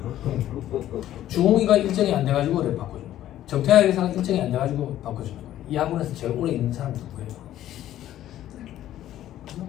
주홍이가 일정이 안 돼가지고 그래 바꿔주는 거예요. 정태학 회사가 일정이 안 돼가지고 바꿔주는 거예요. 이 학원에서 제일 오래 있는 사람이 누구예요?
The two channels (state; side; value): quieter; right; 12.7 dB